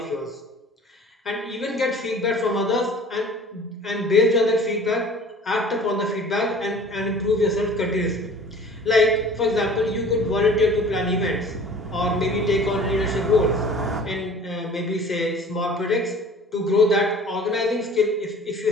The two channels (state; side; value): normal; both; correlation 0.46